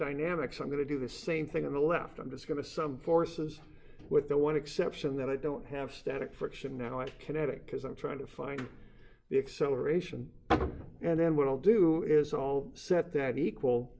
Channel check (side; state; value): both; identical; correlation 1.00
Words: I'm going to do the same thing on the left. I'm just going to sum forces, with the one exception that I don't have static friction now. I have kinetic, because I'm trying to find the acceleration. And then what I'll do is I'll set that equal